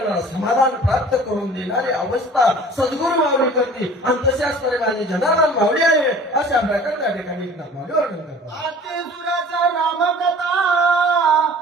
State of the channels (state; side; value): normal; both; correlation 0.46